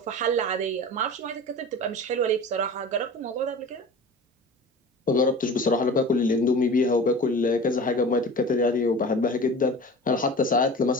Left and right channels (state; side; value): normal; both; correlation 0.36